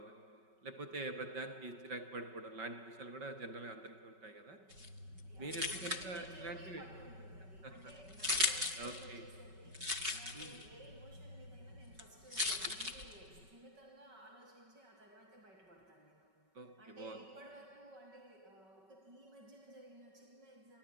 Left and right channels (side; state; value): left; late; 5.3 ms